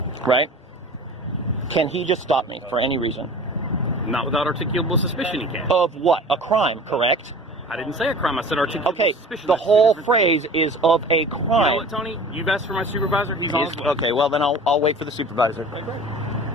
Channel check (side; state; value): both; normal; correlation 0.40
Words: right? Can he just stop me for any reason? Not without articulable suspicion, he can. Of what? A crime, correct? I didn't say a crime, I said articulable Okay. suspicion. The That's two whole different phrase is of a things. You know crime. what, Tony? You've asked for my supervisor, he's on his way. Okay, well then I'll wait for the supervisor.